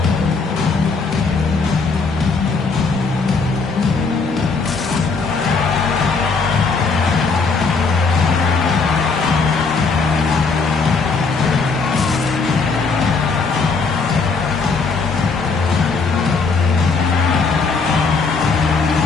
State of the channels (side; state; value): right; quieter; 4.5 dB